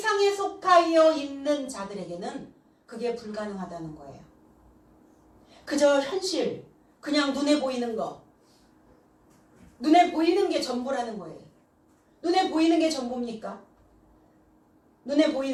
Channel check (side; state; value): both; identical; correlation 1.00